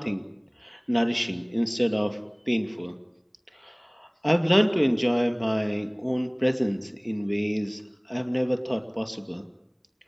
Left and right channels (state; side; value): identical; both; correlation 1.00